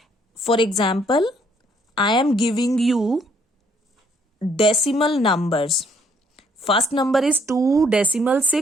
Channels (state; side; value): normal; both; correlation 0.66